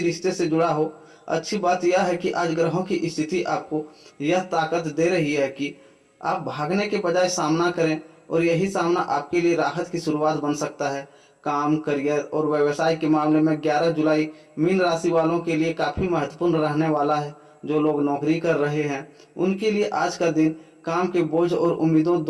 रिश्ते से जुड़ा हो। अच्छी बात यह है कि आज ग्रहों की स्थिति आपको यह ताकत दे रही है कि आप भागने के बजाय सामना करें, और यही सामना आपके लिए राहत की शुरुआत बन सकता है। काम, करियर और व्यवसाय के मामले में 11 जुलाई मीन राशि वालों के लिए काफ़ी महत्वपूर्ण रहने वाला है। जो लोग नौकरी कर रहे हैं उनके लिए आज का दिन काम के बोझ और उम्मीदों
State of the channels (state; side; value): identical; both; correlation 1.00